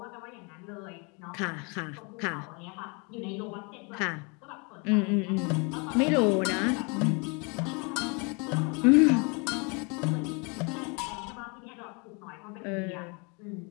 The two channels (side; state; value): right; quieter; 32.2 dB